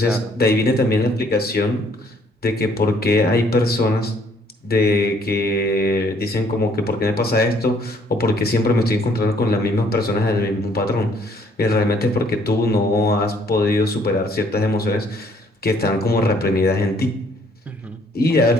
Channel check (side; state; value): both; normal; correlation 0.63